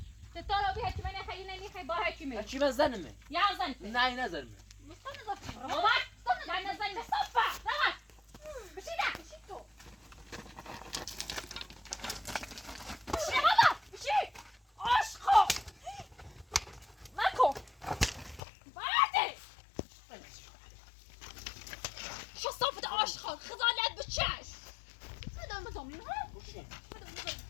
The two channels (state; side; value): drops out; right; at 18.4 s